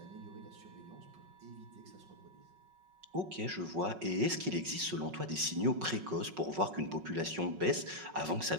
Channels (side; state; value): left; late; 5.4 ms